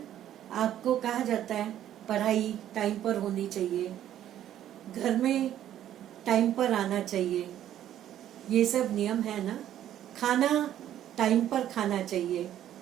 आपको कहा जाता है पढ़ाई टाइम पर होनी चाहिए, घर में टाइम पर आना चाहिए, ये सब नियम है ना। खाना टाइम पर खाना चाहिए।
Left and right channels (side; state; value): left; quieter; 11.5 dB